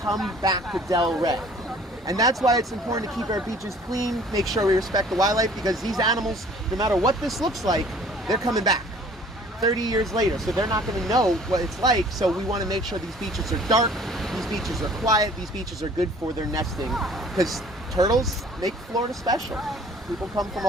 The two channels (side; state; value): both; normal; correlation 0.52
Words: come back to Delray. And that's why it's important to keep our beaches clean, make sure we respect the wildlife, because these animals, no matter what this looks like, they're coming back 30 years later. So they're not going to know what it's like. So we want to make sure these beaches are dark, these beaches are quiet, these beaches are good for their nesting, because turtles make Florida special. People come from